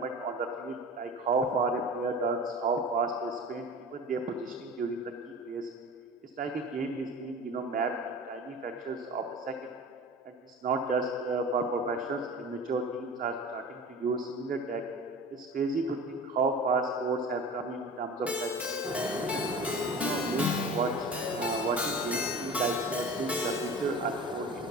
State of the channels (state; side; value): normal; both; correlation 0.36